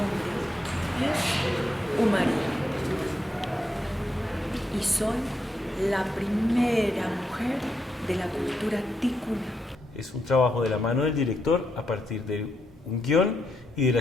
es Umaría y soy la primera mujer de la cultura ticuna. Es un trabajo de la mano del director a partir de un guión y de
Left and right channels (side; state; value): both; normal; correlation 0.81